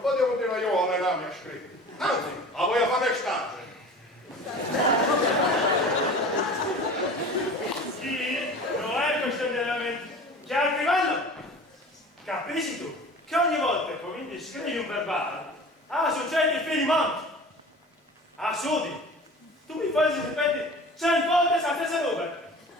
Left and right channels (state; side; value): normal; both; correlation 0.39